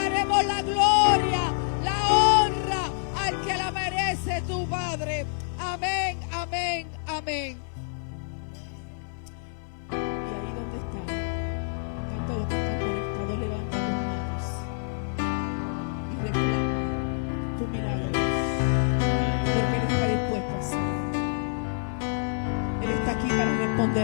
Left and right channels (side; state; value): right; silent; digital silence